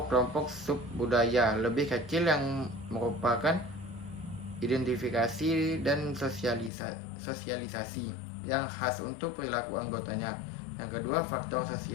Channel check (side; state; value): right; drops out; at 6.7 s